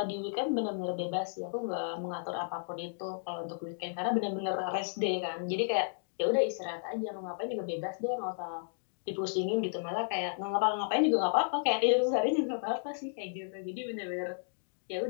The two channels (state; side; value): silent; right; digital silence